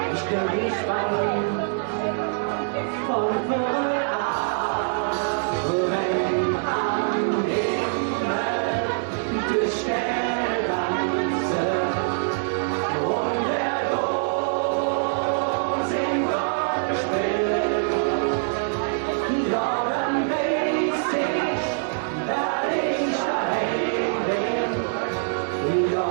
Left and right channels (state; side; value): silent; left; 62 dB below the other